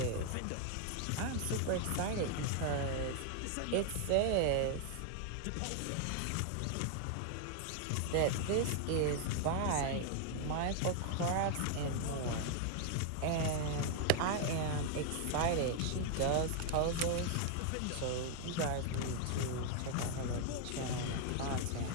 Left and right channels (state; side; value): different; both; correlation 0.00